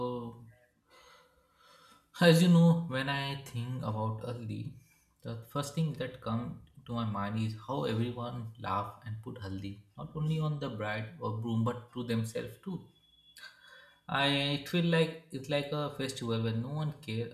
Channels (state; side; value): identical; both; correlation 1.00